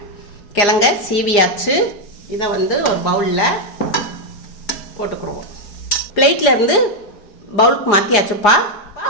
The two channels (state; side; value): late; right; 4.9 ms